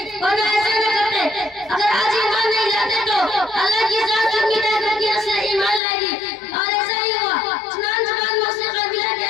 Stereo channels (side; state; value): right; drops out; at 5.8 s